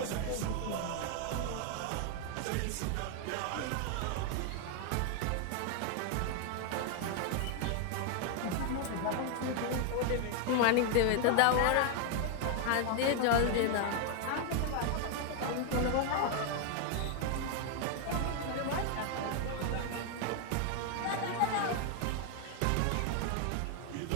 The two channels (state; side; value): different; both; correlation 0.00